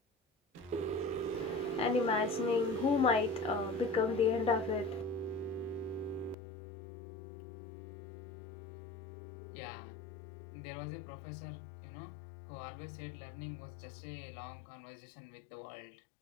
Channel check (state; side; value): drops out; right; at 6.4 s